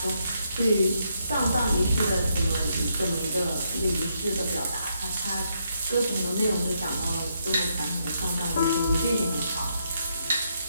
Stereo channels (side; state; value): both; inverted; correlation -0.77